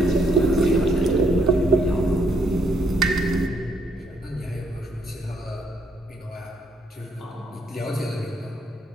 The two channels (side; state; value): both; normal; correlation 0.72